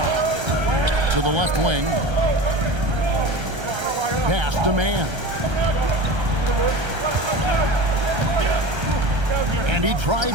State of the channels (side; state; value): left; late; 1.3 ms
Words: To the left wing. Pass to man. And he